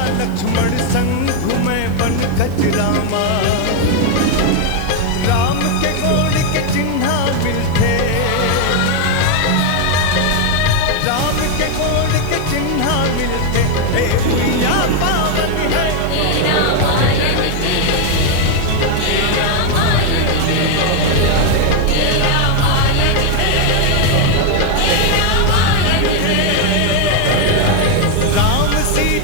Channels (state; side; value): different; both; correlation 0.01